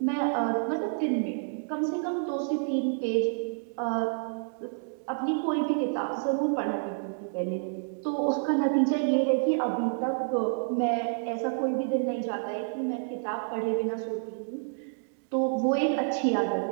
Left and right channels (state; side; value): silent; left; digital silence